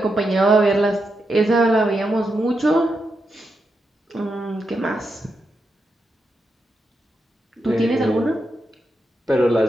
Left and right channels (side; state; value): both; normal; correlation 0.85